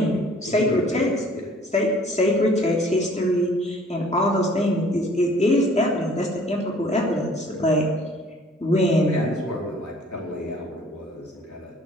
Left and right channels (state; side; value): normal; both; correlation 0.54